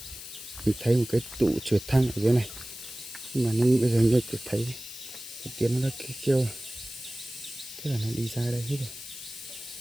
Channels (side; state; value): left; noise; hiss, 12 dB below the sound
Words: mình thấy một cái tụ trượt thang ở dưới này, nhưng mà bây giờ như thấy cái tiếng nó đã kêu, thế là nó đi ra đây hết rồi.